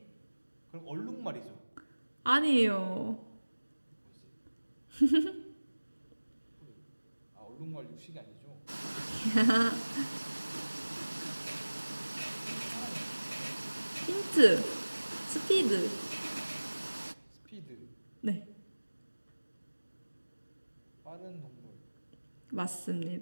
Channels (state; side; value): inverted; both; correlation -1.00